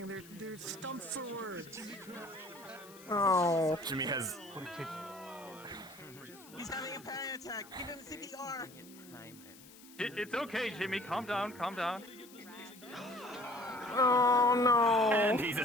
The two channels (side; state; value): left; noise; hiss, 21 dB below the sound